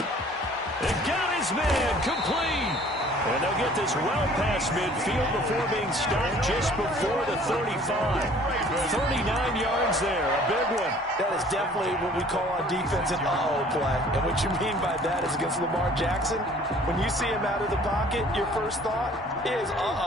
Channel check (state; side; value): normal; both; correlation 0.53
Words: It got his man complete. And they'll get this well past midfield before being stopped just before the 35. 39 yards there, a big one. That is definitely what we call on defense an uh-oh play. And what you mean by that is against Lamar Jackson, when you see him out of the pocket, your first thought is,